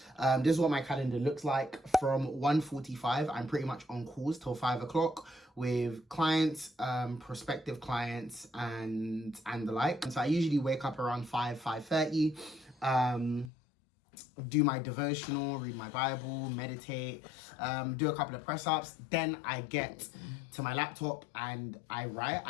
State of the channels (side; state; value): right; drops out; at 13.5 s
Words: This is what my calendar looks like. From 1:45, I'm pretty much on calls till 5 o'clock with clients, prospective clients, and the like. And so I usually wake up around 5:30. Do my devotional, read my Bible, meditate, do a couple of press ups. Then I get to my laptop and I write.